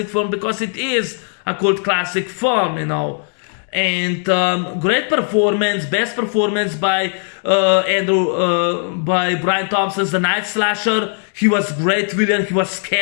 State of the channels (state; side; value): silent; right; 55 dB below the other